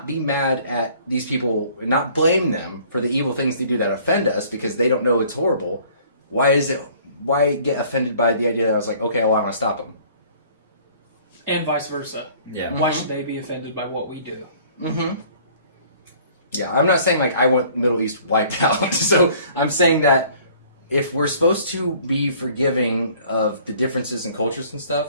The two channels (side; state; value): both; inverted; correlation -0.54